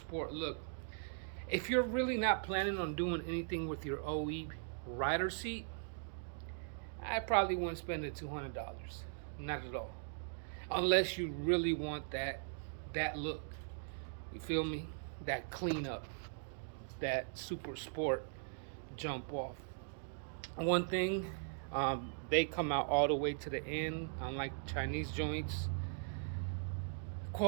look, if you're really not planning on doing anything with your OE rider seat, I probably wouldn't spend the $200. Not at all. Unless you really want that look. You feel me? That cleanup. That super sport jump off. One thing, they come out all the way to the end, unlike Chinese joints.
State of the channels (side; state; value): left; silent; digital silence